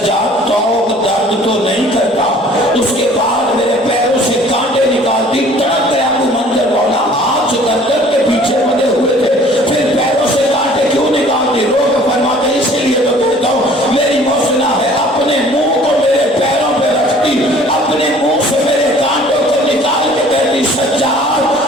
توق درد تو نہیں کرتا اس کے بعد میرے پیروں سے کانٹے نکالتی تڑپ گیا ابو منظر مولا ہاتھ گردن کے پیچھے مدے ہوئے تھے پھر پیروں سے کانٹے کیوں نکالتی رو کے فرماتے اسی لیے تو کہتا ہوں میری محسنہ ہے اپنے منہ کو میرے پیروں پہ رکھتی اپنے منہ سے میرے کانٹوں کو نکال کے کہتی سجاد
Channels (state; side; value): normal; both; correlation 0.52